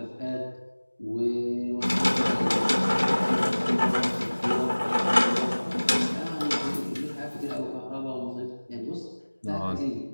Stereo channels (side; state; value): both; inverted; correlation -1.00